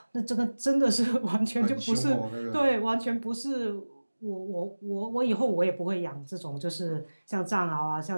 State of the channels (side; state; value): both; inverted; correlation -1.00